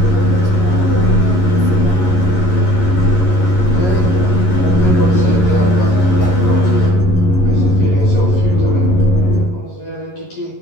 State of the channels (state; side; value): late; right; 11 ms